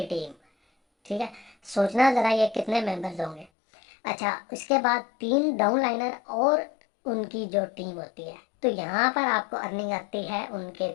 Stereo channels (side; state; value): right; drops out; at 3.5 s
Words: टीम, ठीक है। सोचना ज़रा ये कितने मेंबर्स होंगे। अच्छा, उसके बाद 3 डाउनलाइनर और उनकी जो टीम होती है। तो यहाँ पर आपको अर्निंग आती है उनके